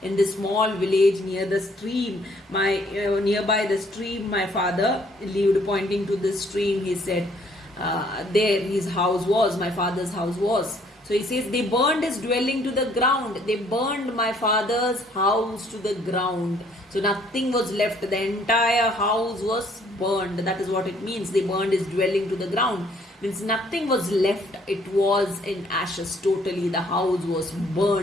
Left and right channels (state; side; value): normal; both; correlation 0.63